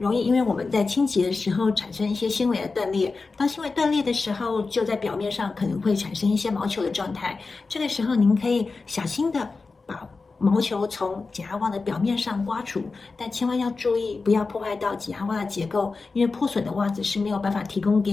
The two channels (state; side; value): quieter; right; 4.1 dB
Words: 易因为我们在清洁的时候产生一些纤维的断裂，当纤维断裂的时候，就在表面上可能会产生一些毛球的状态。这个时候，您可以小心的把毛球从减压袜的表面上刮除，但千万要注意，不要破坏到减压袜的结构，因为破损的袜子是没有办法提供